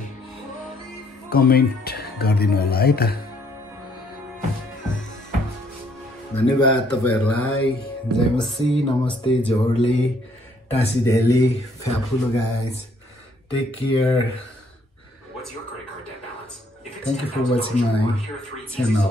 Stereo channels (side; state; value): both; normal; correlation 0.66